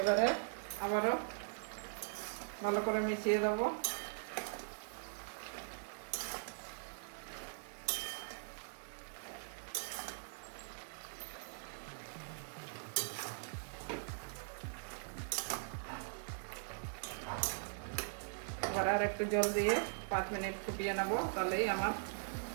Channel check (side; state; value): left; silent; digital silence